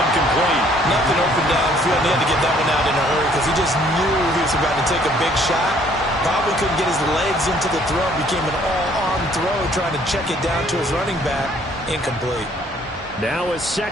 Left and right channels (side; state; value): both; normal; correlation 0.61